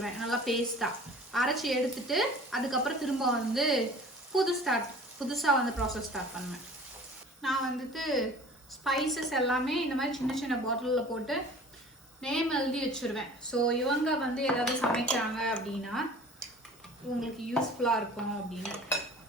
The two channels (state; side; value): normal; both; correlation 0.45